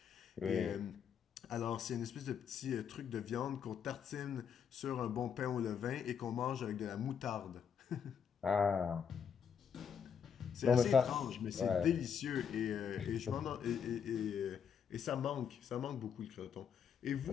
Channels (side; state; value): right; quieter; 7.4 dB